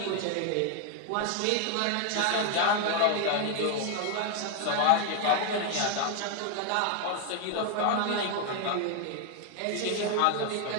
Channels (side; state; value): both; different; correlation 0.00